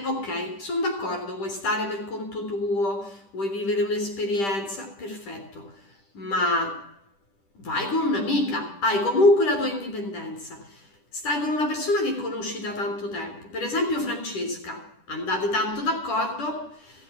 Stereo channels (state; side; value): late; right; 10 ms